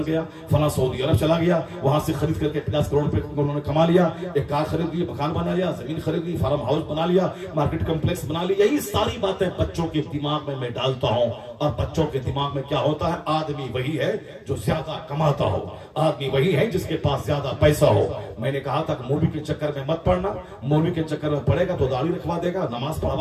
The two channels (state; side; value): identical; both; correlation 1.00